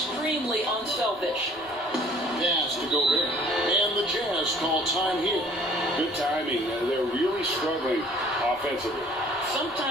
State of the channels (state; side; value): normal; both; correlation 0.53